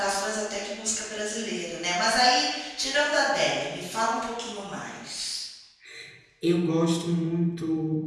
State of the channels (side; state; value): both; identical; correlation 1.00